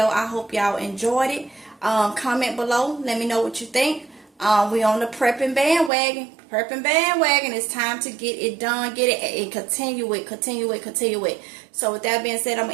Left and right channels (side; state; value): left; drops out; at 5.9 s